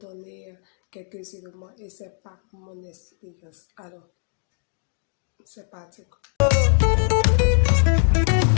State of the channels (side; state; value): right; silent; 63 dB below the other